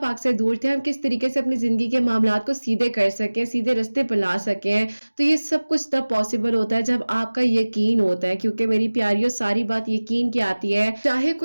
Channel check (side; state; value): both; inverted; correlation -1.00